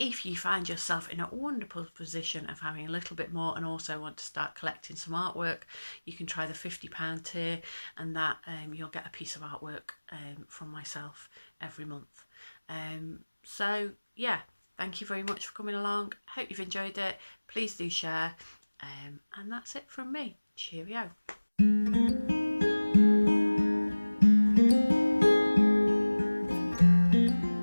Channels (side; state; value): both; inverted; correlation -1.00